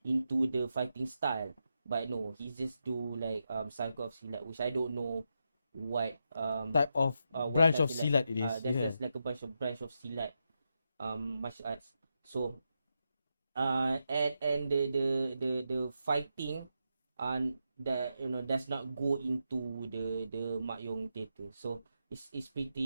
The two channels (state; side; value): inverted; both; correlation -0.85